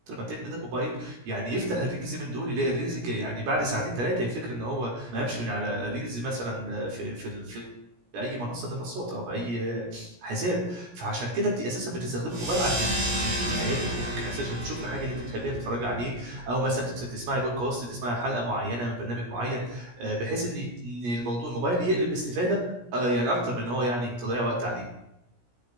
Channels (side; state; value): left; late; 17 ms